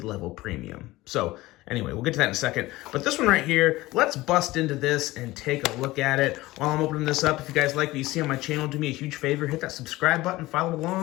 premium. So anyway, we'll get to that in a second. But this one right here, let's bust into this and take a look at it. While I'm opening this up, if you guys like what you see on my channel, do me a huge favor. Hit that subscribe button, follow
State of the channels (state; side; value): quieter; right; 18.6 dB